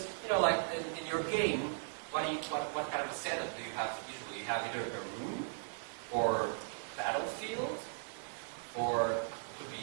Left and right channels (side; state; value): left; silent; digital silence